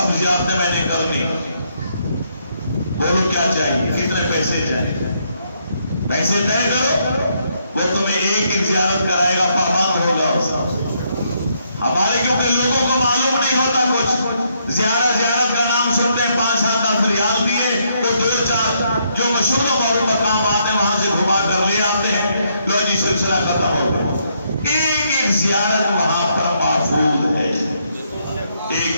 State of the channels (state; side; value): inverted; both; correlation -0.74